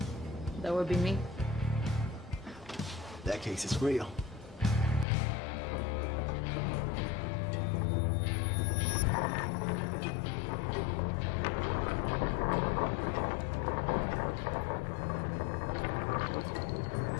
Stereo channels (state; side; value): drops out; right; at 5.1 s